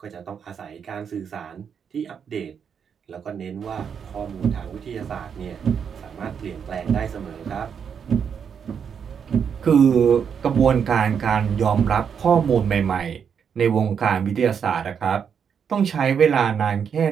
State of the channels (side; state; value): left; quieter; 7.2 dB